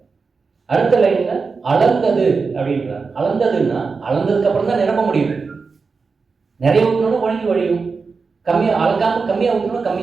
அடுத்த லைன்ல அளந்தது அப்படின்றார். அளந்ததுன்னா அளந்ததுக்கு அப்புறம் தான் நிரப்ப முடியும். நிறைய ஊற்றணும் வழியும், கம்மியாக அளக்காம கம்மியாக ஊற்றணும்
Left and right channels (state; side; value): quieter; left; 4.7 dB